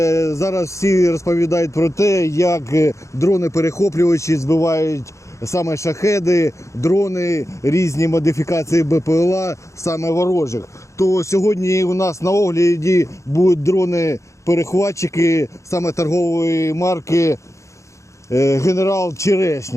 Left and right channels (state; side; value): late; right; 0.15 ms